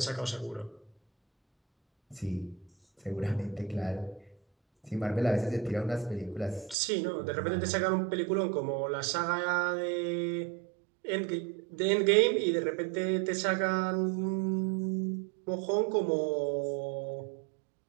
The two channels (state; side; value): drops out; left; at 6.8 s